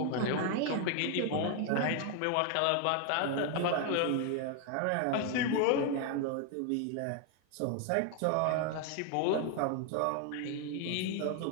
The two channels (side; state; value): both; different; correlation 0.01